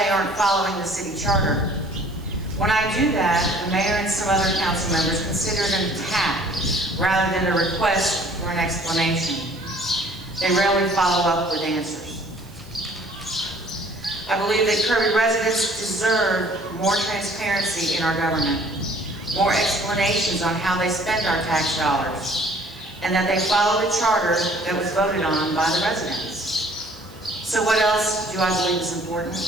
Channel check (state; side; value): noise; right; hiss, 26 dB below the sound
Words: aren't following the city charter. When I do that, the mayor and some other council members consider it an attack rather than a request for an explanation. They rarely follow up with answers. I believe that Kirby residents deserve more transparency in our government, more explanations on how they spend our tax dollars, and that they follow the charter that was voted on by the residents. So what else do I believe is important?